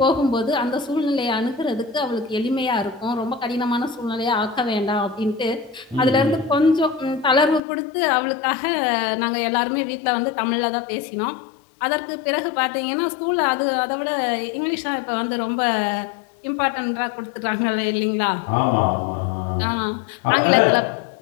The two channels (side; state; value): right; drops out; at 7.6 s